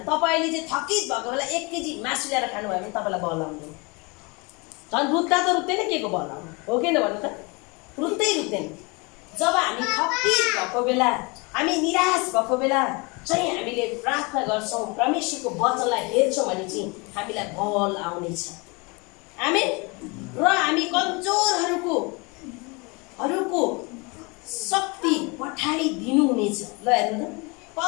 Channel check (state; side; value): quieter; right; 28.5 dB